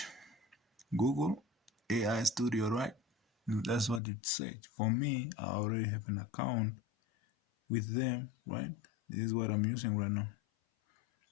Google AI Studio, right? That's what you search. For me, I already have an account with them, right? This is what I'm using right now.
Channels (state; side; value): drops out; right; at 4.0 s